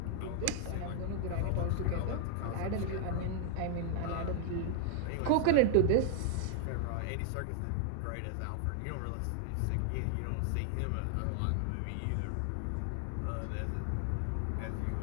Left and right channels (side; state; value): both; different; correlation 0.00